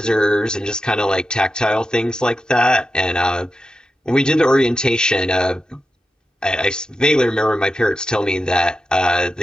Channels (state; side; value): normal; both; correlation 0.90